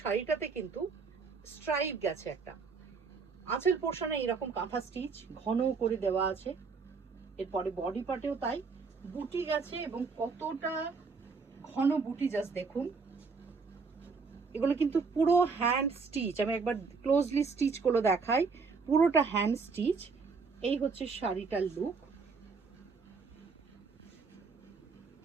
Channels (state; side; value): quieter; left; 4.9 dB